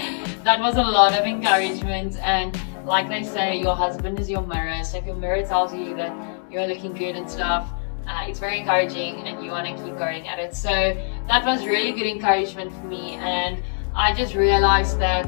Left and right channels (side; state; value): right; silent; digital silence